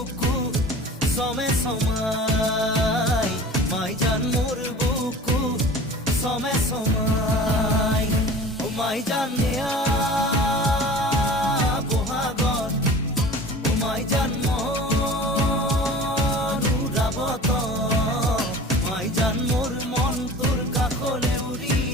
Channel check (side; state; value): both; normal; correlation 0.41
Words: সমে সমাই, মাইজান মোর বুকু সমে সমাই। ও মাইজান নেয়া বহাগত, ও মাইজান মনুরাবত, মাইজান মোর মন তোর কাখলে উড়ি